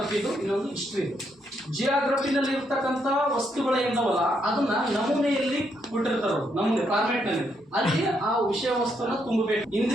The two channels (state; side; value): normal; both; correlation 0.76